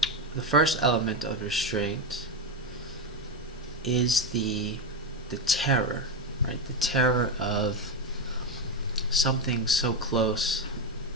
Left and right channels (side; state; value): both; normal; correlation 0.11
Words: The first element of restraint is the terror, right? The terror of something so close